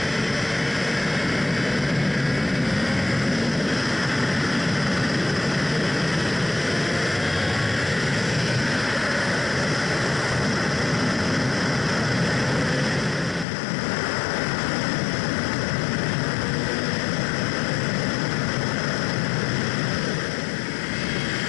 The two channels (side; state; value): right; drops out; at 13.5 s